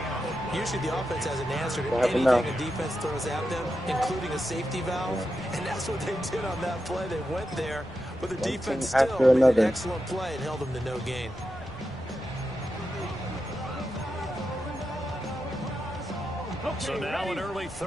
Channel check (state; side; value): noise; right; rumble, 21 dB below the sound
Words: Usually the offense has an answer to anything a defense throws at them, including a safety valve, and that's what they did on that play. They went there, but the defense still made an excellent play and held them to no gain. So now an early